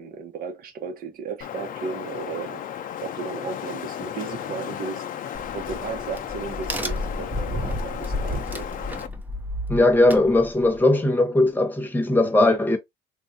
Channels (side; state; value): both; normal; correlation 0.75